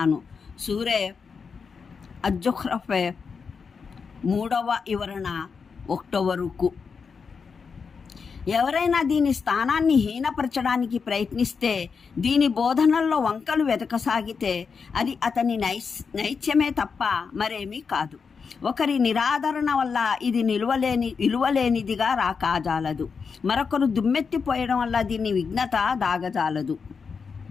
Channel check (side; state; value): right; quieter; 5.6 dB